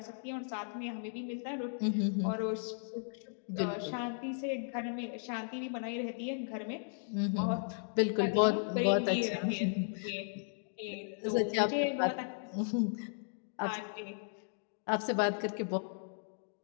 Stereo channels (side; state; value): right; silent; digital silence